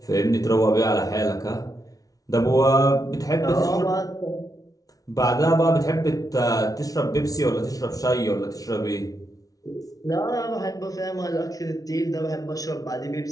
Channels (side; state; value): right; late; 0.18 ms